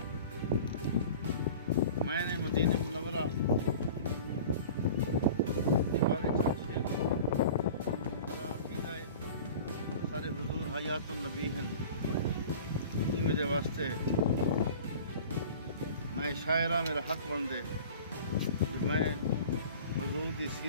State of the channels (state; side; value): inverted; both; correlation -0.41